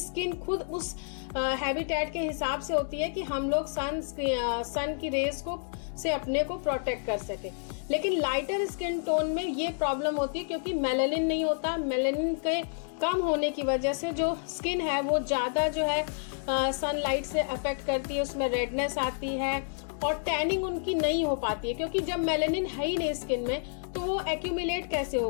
खुद उस हैबिटेट के हिसाब से होती है कि हम लोग सन की रेज को से अपने को प्रोटेक्ट कर सके। लेकिन लाइटर स्किन टोन में ये प्रॉब्लम होती है क्योंकि मेलानिन नहीं होता। मेलानिन के कम होने की वजह से जो स्किन है वो ज़्यादा जो है सनलाइट से अफेक्ट करती है, उसमें रेडनेस आती है और टैनिंग उनकी नहीं हो पाती है, क्योंकि जब मेलानिन है ही नहीं स्किन में तो वो एक्यूमुलेट कैसे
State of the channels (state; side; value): silent; right; digital silence